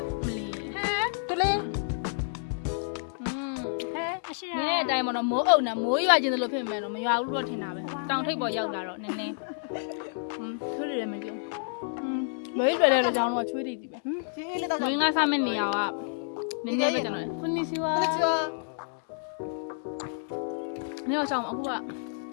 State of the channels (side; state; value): right; silent; digital silence